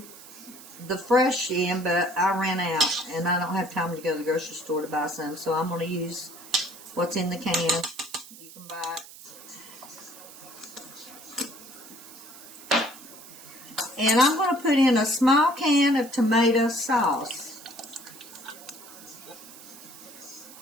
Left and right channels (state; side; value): noise; right; hiss, 17 dB below the sound